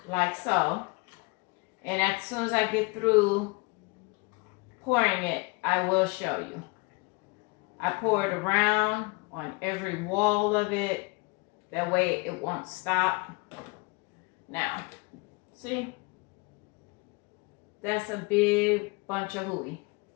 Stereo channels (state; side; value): quieter; right; 28.1 dB